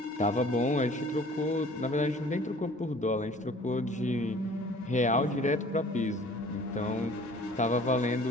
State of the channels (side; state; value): both; normal; correlation 0.50